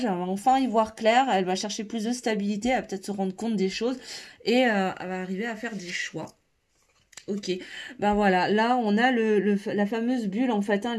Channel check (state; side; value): identical; both; correlation 1.00